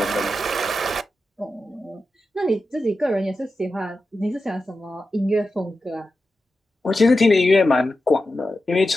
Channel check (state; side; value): normal; both; correlation 0.91